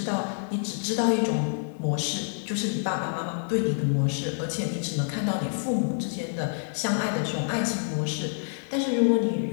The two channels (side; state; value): right; silent; 58 dB below the other